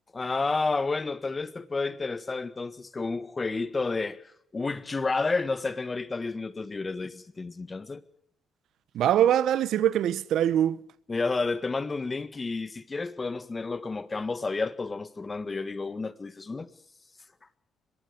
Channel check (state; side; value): normal; both; correlation 0.75